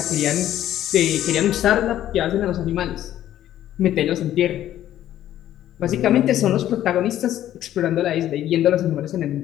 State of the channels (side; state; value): right; quieter; 12.4 dB